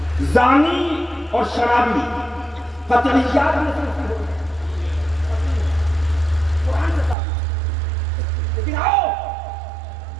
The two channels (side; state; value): left; drops out; at 7.2 s